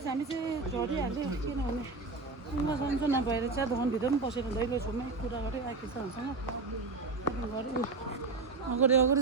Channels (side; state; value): left; quieter; 3.9 dB